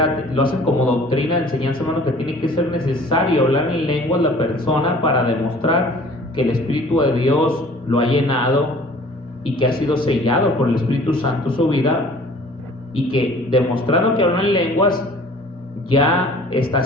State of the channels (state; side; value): normal; both; correlation 0.50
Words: lo hacen como doctrina, enseñanza, hermano, que tiene que ser necesario hablar en lenguas la persona para demostrar que el Espíritu de Dios lo ha llenado y que ha sido sellado por el Espíritu Santo su vida, y que demostrando que habla en lenguas ya está